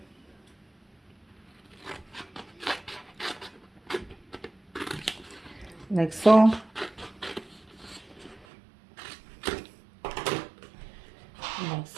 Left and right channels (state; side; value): drops out; left; at 8.5 s